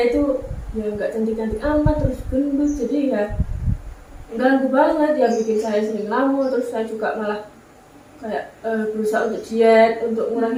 itu ya nggak cantik-cantik amat, terus gendut, jadi ya ganggu banget, ya bikin saya sering ngelamun. Terus saya juga malah kayak berusaha untuk diet, untuk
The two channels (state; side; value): identical; both; correlation 1.00